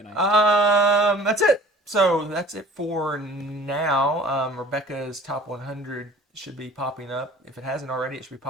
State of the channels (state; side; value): normal; both; correlation 0.47